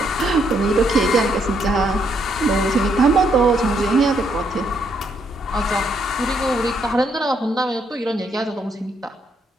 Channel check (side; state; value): both; normal; correlation 0.73